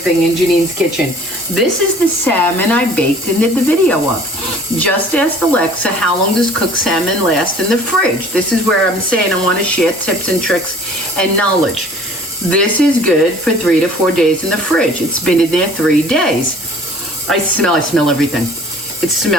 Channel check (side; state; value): both; normal; correlation 0.50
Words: in Janine's kitchen. This is the salmon I baked and did the video of. Just asked Alexa, how long does cooked salmon last in the fridge? This is where I'm saying I want to share tips and tricks and knowledge. This is good for 3 to 4 days in the fridge. It's been in there 3 days. I smell everything. It